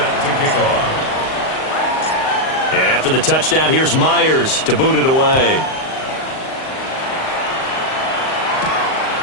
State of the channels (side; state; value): right; late; 38 ms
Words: to kick off. And after the touchdown, here's Myers to boot it away.